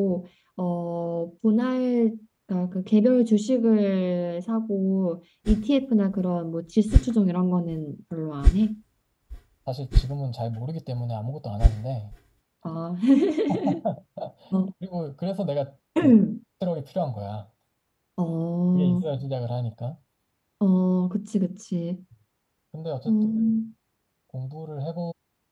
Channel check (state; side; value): identical; both; correlation 1.00